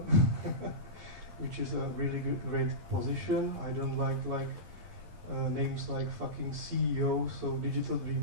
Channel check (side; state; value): left; late; 11 ms